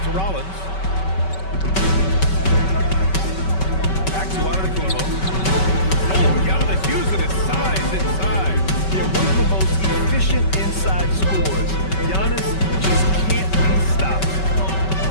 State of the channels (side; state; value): right; late; 5.2 ms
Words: to Rollins. Back to Antetokounmpo. Oh, Giannis using his size inside. They're one of the most efficient inside scorers. Giannis just can't be stopped.